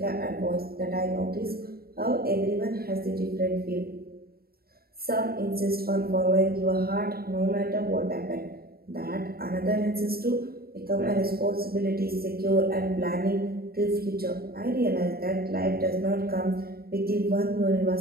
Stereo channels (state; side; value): late; left; 0.44 ms